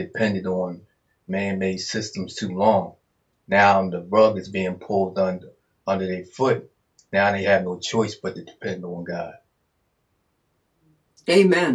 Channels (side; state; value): both; identical; correlation 1.00